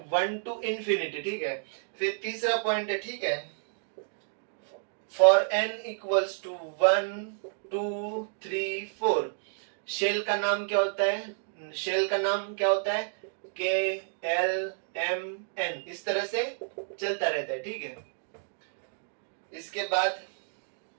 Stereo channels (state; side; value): silent; left; digital silence